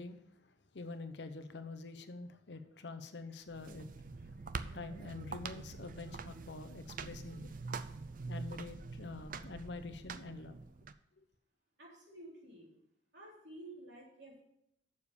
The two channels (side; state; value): both; normal; correlation 0.48